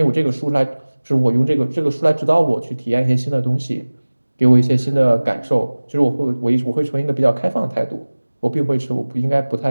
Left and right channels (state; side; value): inverted; both; correlation -1.00